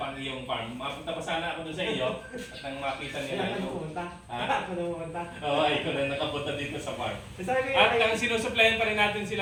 ang iyong farm. Mapunta pa sana ako doon sa iyo at nang makita nila ito. pumunta. Ha? Ako na pumunta. Oo, ikaw na nakapunta dito sa farm. Sabi ko, At ang sinusuplayan pa rin natin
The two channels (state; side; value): identical; both; correlation 1.00